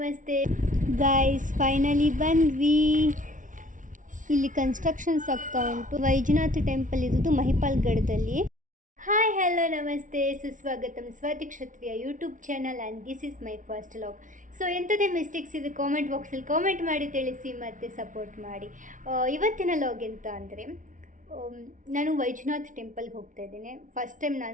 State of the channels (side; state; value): left; late; 0.38 ms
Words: guys, finally ಬಂದ್ವಿ. ಇಲ್ಲಿ ಕನ್ಸ್ಟ್ರಕ್ಷನ್ಸ್ ಆಗ್ತಾ ಉಂಟು. ವೈಜನಾಥ್ ಟೆಂಪಲ್ ಇರೋದು ಮಹಿಪಾಲ್ಗಢದಲ್ಲಿ. ಹಾಯ್ ಹಲೋ ನಮಸ್ತೆ, ಸುಸ್ವಾಗತಂ Swathi Kshatriya YouTube channel and this is my first vlog. So ಎಂಥದೇ ಮಿಸ್ಟೇಕ್ಸ್ ಇದೆ ಕಾಮೆಂಟ್ ಬಾಕ್ಸಲ್ಲಿ ಕಾಮೆಂಟ್ ಮಾಡಿ ತಿಳಿಸಿ ಮತ್ತು ಸಪೋರ್ಟ್ ಮಾಡಿ. ಇವತ್ತಿನ ಲಾಗ್ ಎಂತ ಅಂದರೆ, ನಾನು ವೈಜನಾಥ್ ಟೆಂಪಲ್ಗೆ ಹೋಗ್ತಾ ಇದ್ದೇನೆ. ಫಸ್ಟ್ ಟೈಮ್